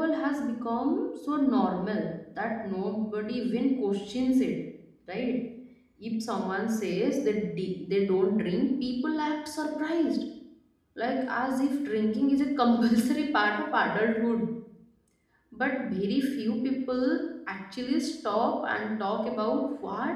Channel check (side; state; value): both; identical; correlation 1.00